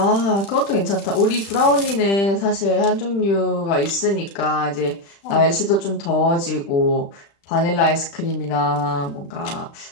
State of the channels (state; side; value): late; right; 35 ms